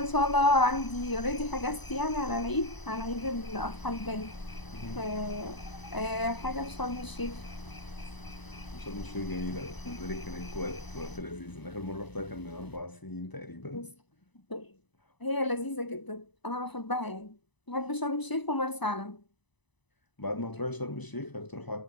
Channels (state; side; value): late; right; 1.0 ms